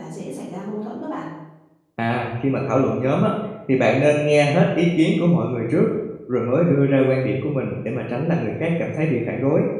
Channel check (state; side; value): identical; both; correlation 1.00